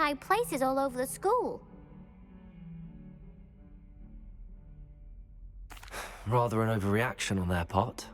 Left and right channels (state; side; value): identical; both; correlation 1.00